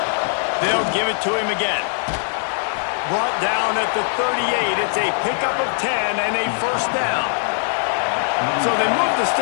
They'll give it to him again. Brought down at the 38. It's a pickup of 10 and a first down. So they move the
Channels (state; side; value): silent; right; digital silence